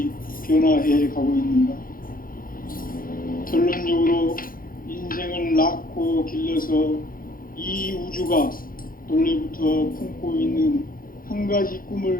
변화해 가고 있는가? 결론적으로 인생을 낳고 길러서 이 우주가 원래부터 품고 있는 한 가지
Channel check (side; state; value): right; late; 0.41 ms